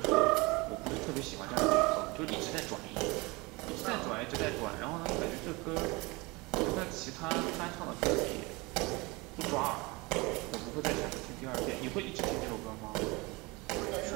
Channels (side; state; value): left; quieter; 24.9 dB